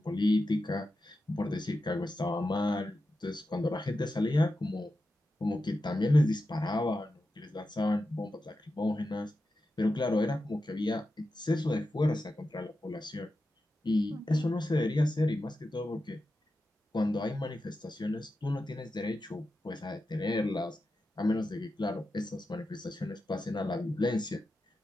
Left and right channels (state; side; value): normal; both; correlation 0.90